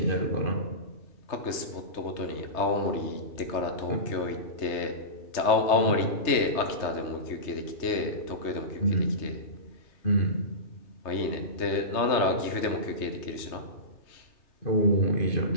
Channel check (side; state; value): right; late; 3.3 ms